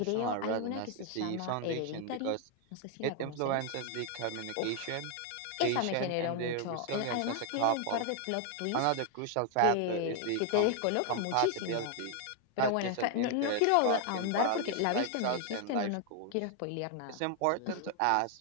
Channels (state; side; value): different; both; correlation 0.00